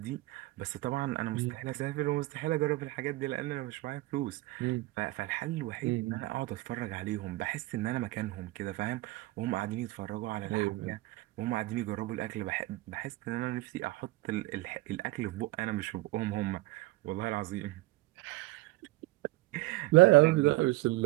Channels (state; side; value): quieter; left; 19.6 dB